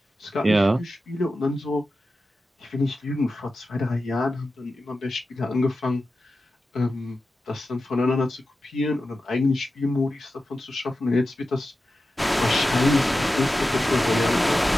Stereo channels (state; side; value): normal; both; correlation 0.92